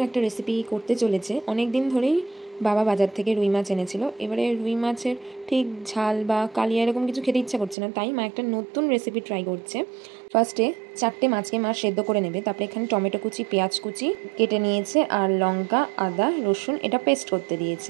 রেসিপি করতে চলেছে। অনেক দিন ধরেই বাবা বাজার থেকে রুই মাছ এনেছিল। এবারে রুই মাছের ঠিক ঝাল বা কালিয়া এরকম কিছু খেতে ইচ্ছা করছে না, তাই মা একটা নতুন রেসিপি ট্রাই করছে। ফার্স্টে 4টে মাছকে মা সেদ্ধ করে নেবে, তারপরে এখানে টমেটো কুচি, পেঁয়াজ কুচি কেটে নিয়েছে, আর লঙ্কা, আদা, রসুন এটা পেস্ট করতে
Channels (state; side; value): drops out; left; at 7.8 s